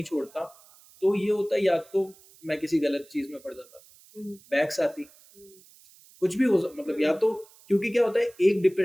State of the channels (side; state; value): right; noise; hiss, 26 dB below the sound